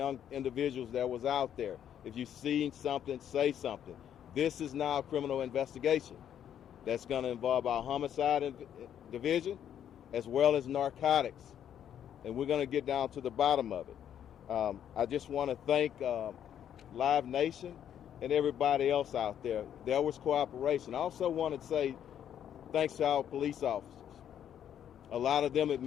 individuals that was out there. If you've seen something, say something. This is now a criminal investigation. That's going to involve our homicide division as well as narcotics. And we're going to get down to the bottom of it. I just want to thank Live Nation and everybody else out there. There was cooperation. I also want to say thanks to our police officers. A lot of them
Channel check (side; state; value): right; quieter; 9.7 dB